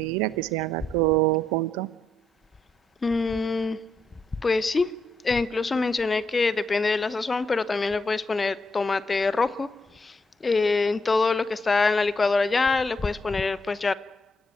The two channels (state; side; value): normal; both; correlation 0.79